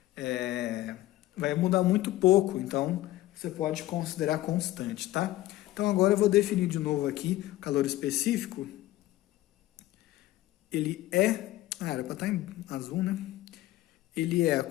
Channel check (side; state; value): right; quieter; 16.1 dB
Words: Vai mudar muito pouco, então você pode considerar constante, tá? Então agora eu vou definir de novo aqui o calor específico. Ele é... era para estar em azul, né? Ele é a